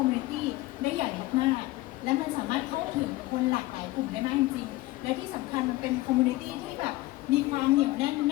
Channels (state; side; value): quieter; right; 18.8 dB